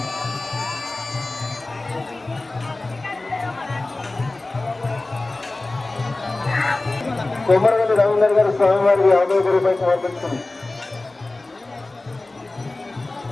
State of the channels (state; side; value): quieter; right; 3.0 dB